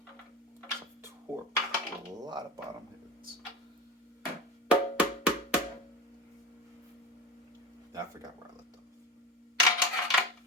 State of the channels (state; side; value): normal; both; correlation 0.26